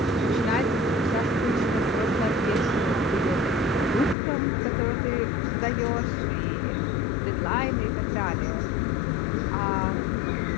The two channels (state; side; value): drops out; right; at 4.2 s